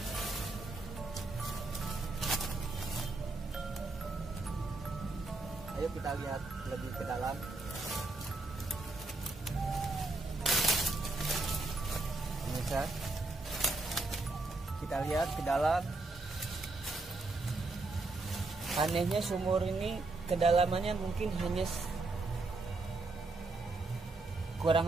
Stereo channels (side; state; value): left; quieter; 3.2 dB